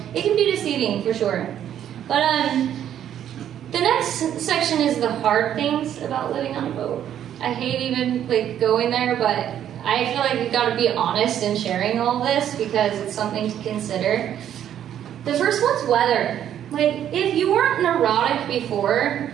it can be deceiving for sure. But the next section is the hard things about living on a boat. I hate even like going there, but I feel like we've got to be honest in sharing all this because it's something to consider. The first one's weather. Like, if you weren't neurotic before,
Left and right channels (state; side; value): quieter; left; 10.3 dB